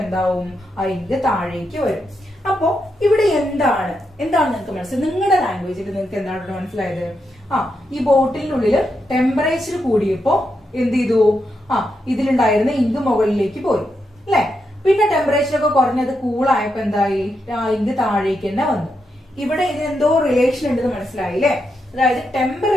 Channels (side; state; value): both; normal; correlation 0.83